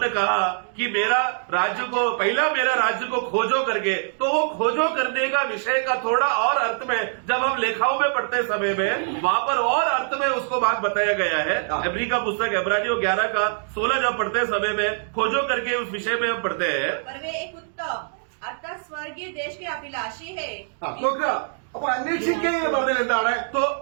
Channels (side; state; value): left; silent; digital silence